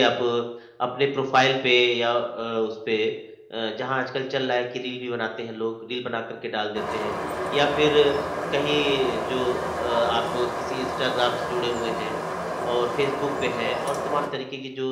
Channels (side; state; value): both; identical; correlation 1.00